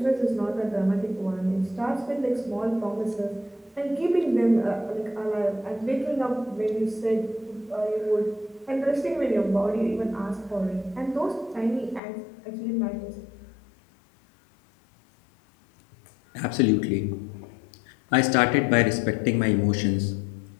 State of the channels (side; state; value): right; drops out; at 12.0 s